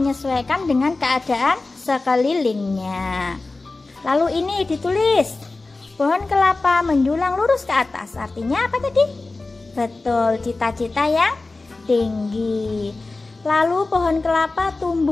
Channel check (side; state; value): right; quieter; 3.4 dB